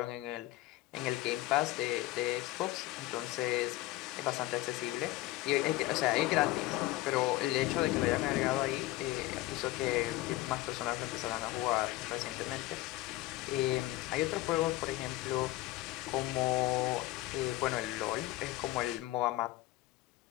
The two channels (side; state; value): right; quieter; 17.3 dB